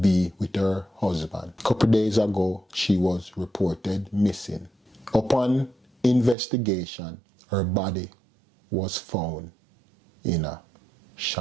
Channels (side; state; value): left; drops out; at 6.4 s